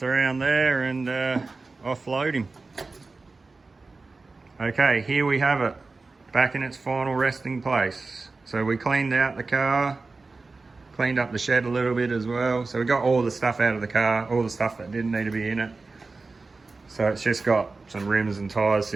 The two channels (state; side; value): quieter; left; 3.8 dB